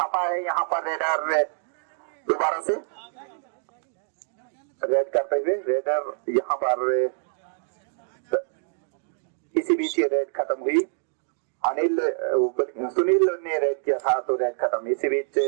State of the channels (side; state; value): left; silent; digital silence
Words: है यहाँ पर रेडर दोबारा से रेड करते हुए रेडर यहाँ पर इसी बीच ये रेड खत्म हुई। अनिल सुनील ने रेड किया था तो रेड खत्म। इसी बीच